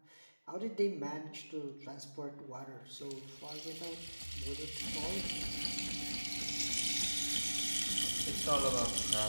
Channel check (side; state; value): both; inverted; correlation -1.00